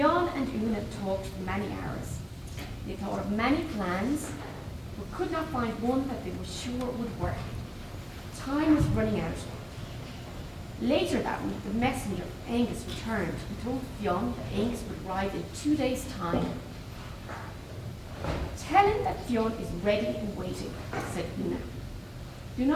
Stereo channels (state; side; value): identical; both; correlation 1.00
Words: and Una talked for many hours. They thought of many plans, but could not find one that they were sure would work. Time was running out. Later that week, the messenger from Angus returned and told Fionn that Angus would arrive in 2 days' time. "Tell him that Fionn is ready and waiting," said Una. "Do